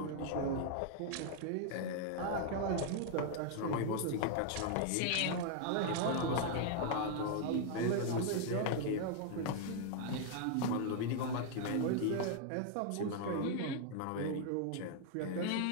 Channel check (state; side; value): different; both; correlation 0.00